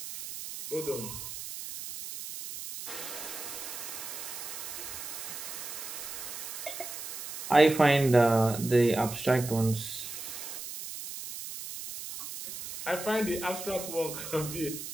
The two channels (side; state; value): right; noise; hiss, 8 dB below the sound